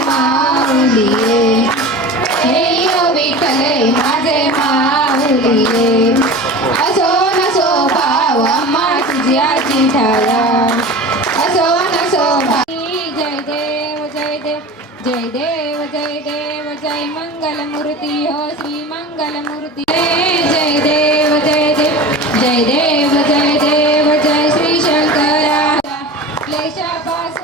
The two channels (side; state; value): both; normal; correlation 0.34